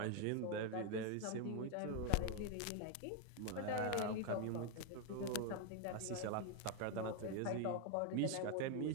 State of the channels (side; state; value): both; different; correlation 0.01